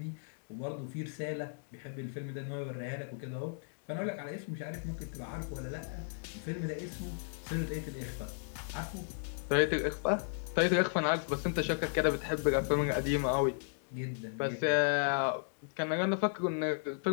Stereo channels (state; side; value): silent; right; digital silence